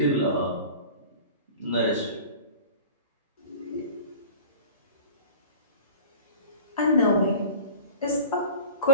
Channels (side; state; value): both; inverted; correlation -0.41